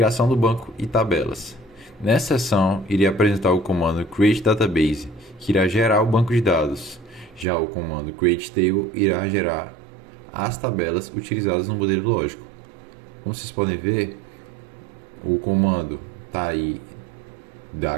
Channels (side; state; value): left; drops out; at 7.5 s